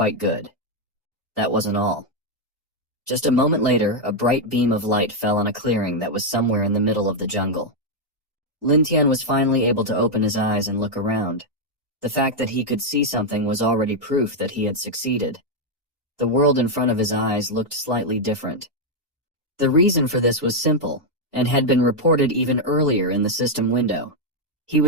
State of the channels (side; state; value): both; normal; correlation 0.00